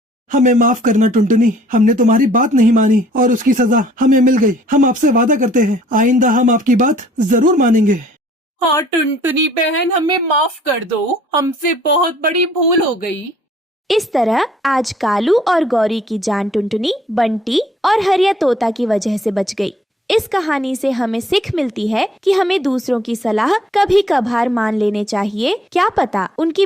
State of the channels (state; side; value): normal; both; correlation 0.59